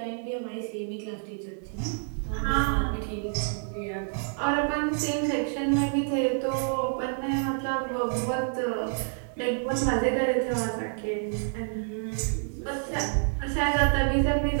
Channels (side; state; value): left; silent; 59 dB below the other